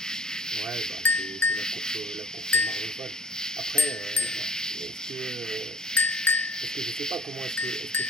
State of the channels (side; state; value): both; normal; correlation 0.46